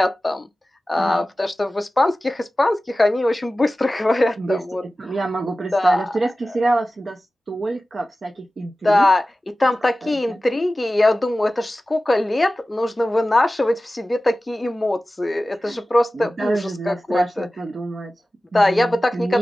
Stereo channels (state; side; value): normal; both; correlation 0.96